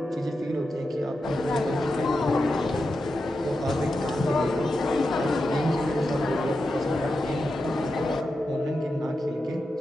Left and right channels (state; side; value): normal; both; correlation 0.89